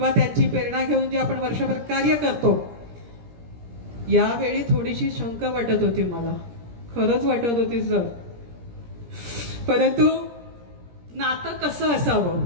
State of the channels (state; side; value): late; left; 17 ms